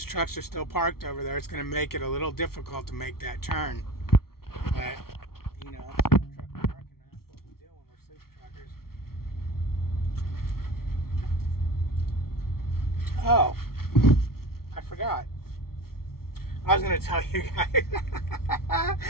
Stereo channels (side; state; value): right; late; 0.94 ms